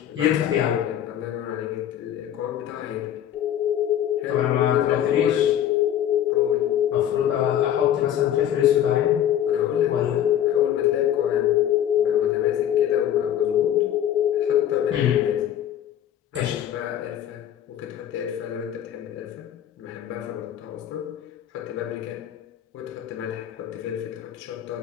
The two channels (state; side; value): quieter; right; 10.8 dB